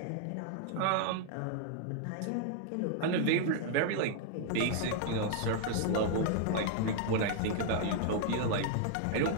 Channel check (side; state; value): both; different; correlation 0.00